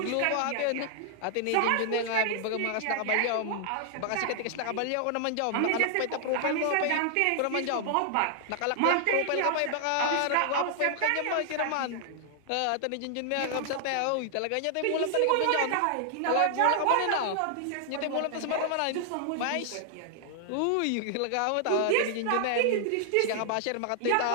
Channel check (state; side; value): different; both; correlation -0.01